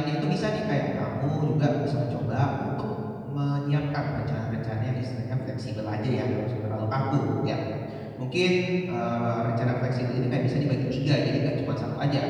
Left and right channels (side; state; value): both; identical; correlation 1.00